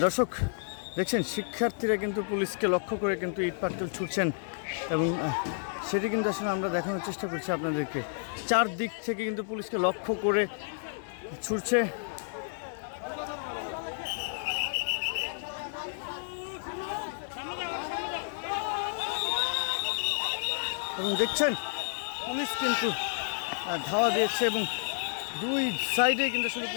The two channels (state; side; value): silent; right; digital silence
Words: দর্শক দেখছেন, শিক্ষার্থীরা কিন্তু পুলিশকে লক্ষ্য করে কিন্তু ইট পাটকেল ছুটছেন এবং সেটি কিন্তু আসলে আমরা দেখানোর চেষ্টা করছি আপনাদেরকে। চারদিক থেকে কিন্তু পুলিশকে লক্ষ্য করে ছুটছে এবং দেখছেন পুলিশ কিন্তু ধাওয়া দিয়েছে এবং দুই সাইডে কিন্তু আসলে